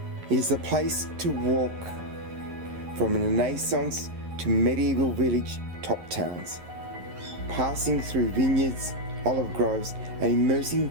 It is a place to walk from Renaissance to medieval village top towns, passing through vineyards, olive groves, and immersing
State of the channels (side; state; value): left; late; 11 ms